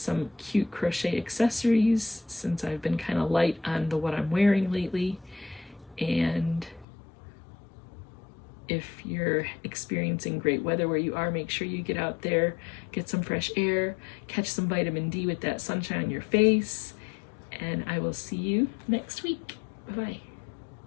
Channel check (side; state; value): right; drops out; at 6.9 s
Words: cute crochet accessories since I've been kind of light on what I'm wearing lately. And if you're experiencing great weather where you are, make sure you get out there, get some fresh air, catch some vitamin D with that sunshine on your face, and I will see you next week. Bye-bye.